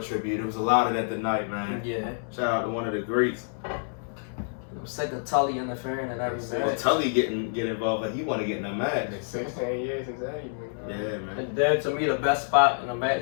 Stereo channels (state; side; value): silent; right; 60 dB below the other